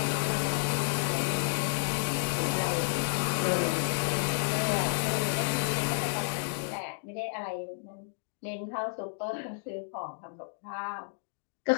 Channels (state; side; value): silent; right; digital silence